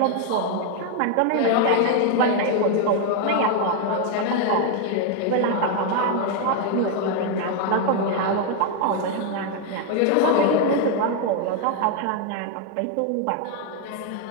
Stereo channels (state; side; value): different; both; correlation 0.00